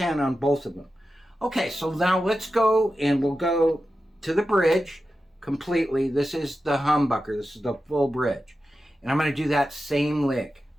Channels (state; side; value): normal; both; correlation 0.92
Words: on both of them. Okay, so now let's go and we'll go to the bridge completely. This is the humbucker. This is the full bridge. And I'm going to do that same lick.